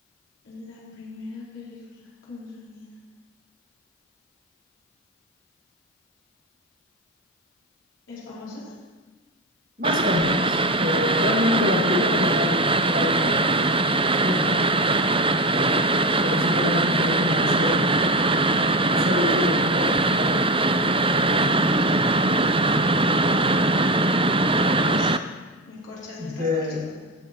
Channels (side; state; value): both; normal; correlation 0.17